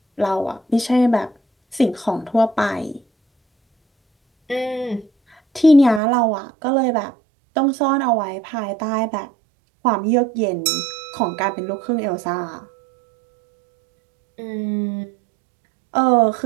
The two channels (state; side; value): drops out; left; at 6.0 s